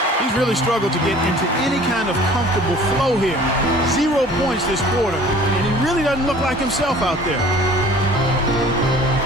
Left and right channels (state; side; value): normal; both; correlation 0.49